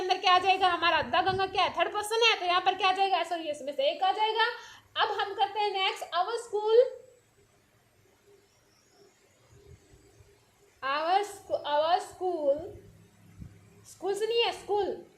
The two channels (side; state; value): both; identical; correlation 1.00